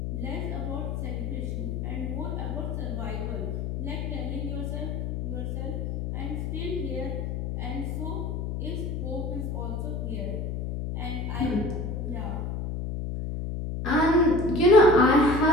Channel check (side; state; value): left; noise; hum, 3 dB below the sound